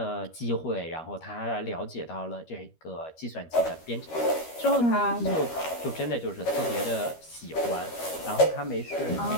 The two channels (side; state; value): right; late; 13 ms